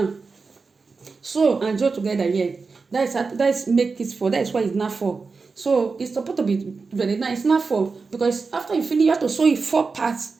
So and join together here. That's make it 4. That's why it's not 4. So it's supposed to be very nice. It's not 4 because after you finish, you have to sew it 4 parts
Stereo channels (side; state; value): left; quieter; 4.5 dB